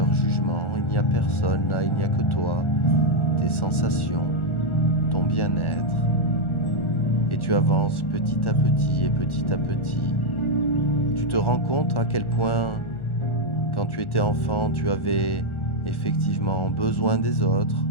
jugement. Il n'y a personne là, il n'y a que toi, tes sensations, ton bien-être. Et tu avances petit à petit et petit à petit. Tu te rends compte à quel point, quand tu étais enfant, tu avais effectivement besoin des autres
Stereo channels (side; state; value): right; late; 1.4 ms